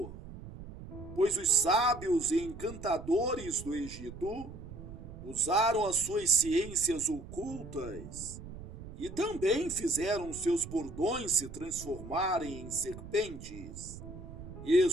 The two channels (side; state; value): right; noise; rumble, 13 dB below the sound